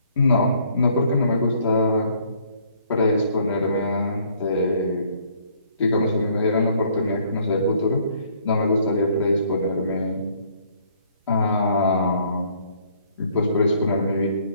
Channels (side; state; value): both; inverted; correlation -0.63